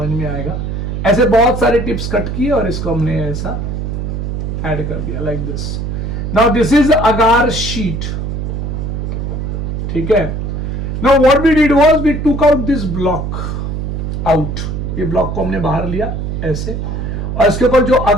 में आएगा. ऐसे बहुत सारे टिप्स कट किए और इसको हमने ऐसा ऐड कर दिया like this. Now this is agar sheet, ठीक है. Now what we did was we took out this block out. ये ब्लॉक को हमने बाहर लिया ऐसे और इसके ऊपर जो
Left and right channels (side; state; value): right; noise; hum, 3 dB below the sound